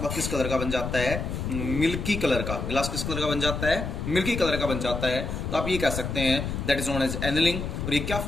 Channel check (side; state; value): left; noise; rumble, 4 dB below the sound